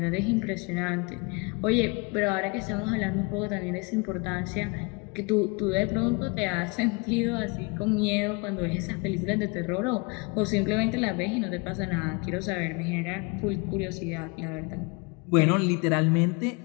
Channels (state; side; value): quieter; right; 29.2 dB